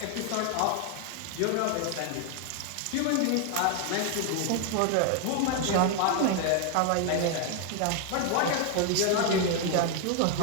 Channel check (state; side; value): different; both; correlation 0.00